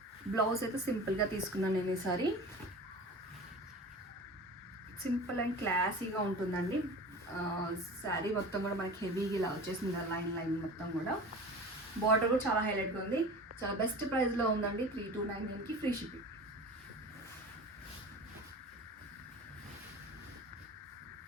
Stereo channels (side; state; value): both; normal; correlation 0.36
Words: బ్లౌజ్ అయితే సింపుల్గా తీసుకున్నాను నేను ఈసారి. సింపుల్ అండ్ క్లాసీగా ఉంటుందండి. శారీ మొత్తం కూడా మనకి హెవీగా ఇలా వచ్చేసింది, లైన్ మొత్తం కూడా. బార్డర్ కూడా చాలా హైలైట్గా ఉంది. చాలా బెస్ట్ ప్రైస్లో ఉందండి. 3299కి ఫ్రీ షిప్పింగ్.